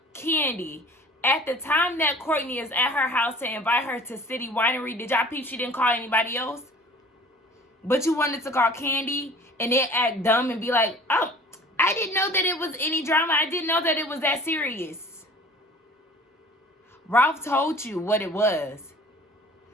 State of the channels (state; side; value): normal; both; correlation 0.47